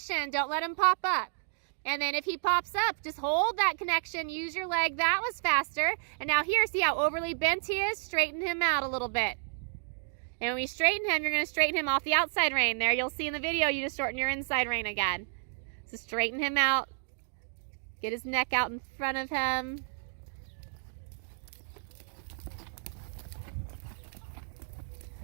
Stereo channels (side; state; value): left; silent; digital silence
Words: Don't let him pop up. And then if he pops up, just hold that connection. Use your leg. That was faster. And now here, see how overly bent he is? Straighten him out a little bit. And when we straighten him, you're going to straighten him off the outside rein. There, you'll see in the video, you just shorten your inside rein again. So straighten him out. Get his neck out in front of him.